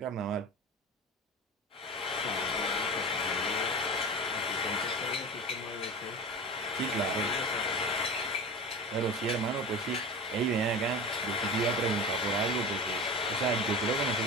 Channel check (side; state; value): both; normal; correlation 0.30